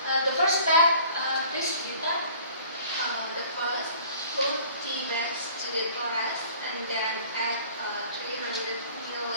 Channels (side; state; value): both; inverted; correlation -0.50